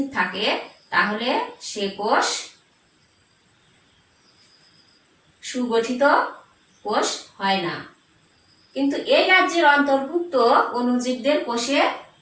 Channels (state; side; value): identical; both; correlation 1.00